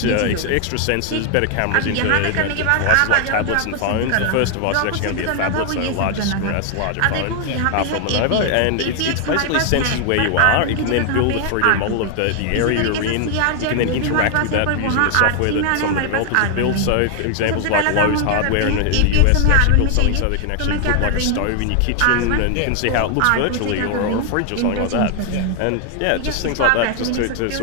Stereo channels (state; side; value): different; both; correlation 0.00